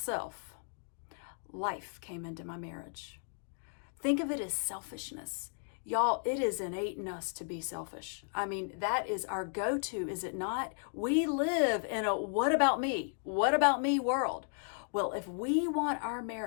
life came into my marriage. Think of it as selfishness. Y'all, it is innate in us to be selfish. I mean, that is our go-to, is it not? We live in a what about me? What about me world? Well, if we want our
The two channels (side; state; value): right; silent; 55 dB below the other